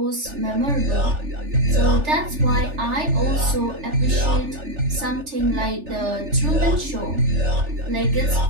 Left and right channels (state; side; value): late; left; 3.4 ms